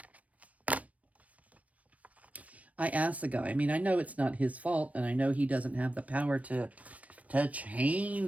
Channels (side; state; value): left; late; 0.067 ms